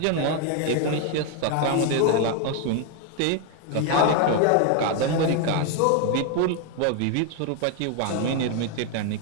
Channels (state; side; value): different; both; correlation 0.01